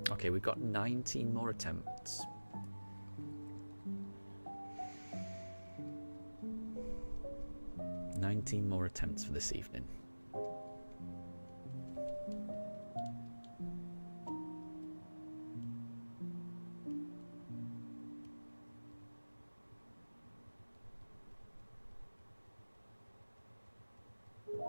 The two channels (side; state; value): both; inverted; correlation -1.00